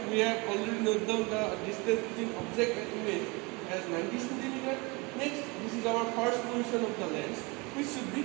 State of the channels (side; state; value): left; quieter; 27.3 dB